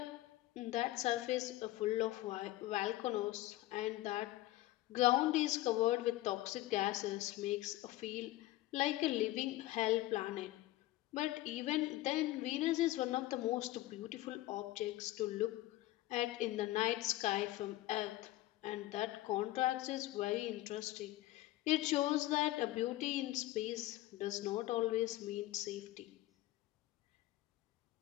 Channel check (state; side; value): quieter; right; 16.6 dB